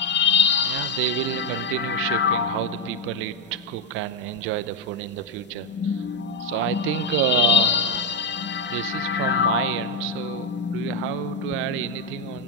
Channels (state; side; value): normal; both; correlation 0.05